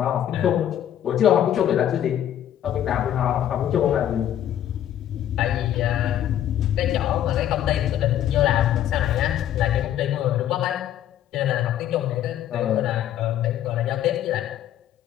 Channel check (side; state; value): right; quieter; 11.2 dB